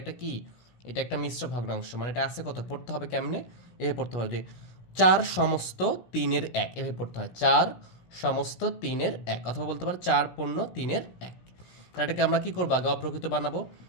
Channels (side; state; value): right; late; 17 ms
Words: একটা কি, এটা একটা মিশ্র ভগ্নাংশ, মানে এটা আছে কত, পড়তে হবে কেমনে, এভাবে পড়তে হবে যে 4 সমস্ত 3-এর 1, এভাবে পড়তে হয় 4 সমস্ত 3-এর 1, অথবা বলতে পারো 4 পূর্ণ 3-এর 1। তাহলে এটাকে আমরা কি করবো, আগে অপ্রকৃত বানাবো।